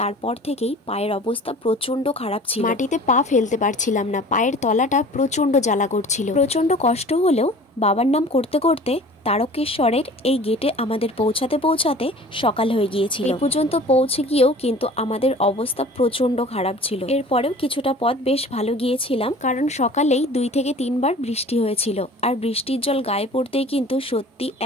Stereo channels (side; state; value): both; normal; correlation 0.45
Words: থেকেই পায়ের অবস্থা প্রচন্ড খারাপ ছিল। মাটিতে পা ফেলতে পারছিলাম না, পায়ের তলাটা প্রচন্ড জ্বালা করছিল। প্রচন্ড কষ্ট হলেও বাবার নাম করতে করতে তারকেশ্বরের এই গেটে আমাদের পৌঁছাতে পৌঁছাতে সকাল হয়ে গিয়েছিল। এই পর্যন্ত পৌঁছে গিয়েও কিন্তু আমাদের অবস্থা প্রচন্ড খারাপ ছিল। এরপরেও কিছুটা পথ বেশ ভালো গিয়েছিলাম, কারণ সকালেই 2 থেকে 3 বার বৃষ্টি হয়েছিল আর বৃষ্টির জল গায়ে পড়তেই কিন্তু সত্যি